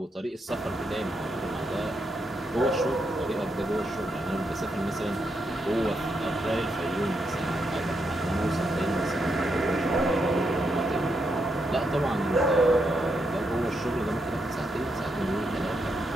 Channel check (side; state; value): both; normal; correlation 0.81